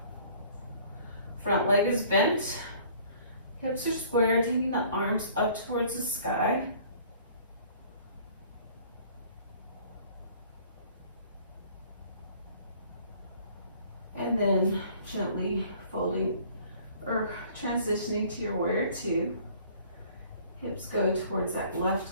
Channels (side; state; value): both; inverted; correlation -0.54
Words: Front leg is bent, hips are square, taking the arms up towards the sky. And then gently folding or transitioning to your warrior two. Hips go towards that left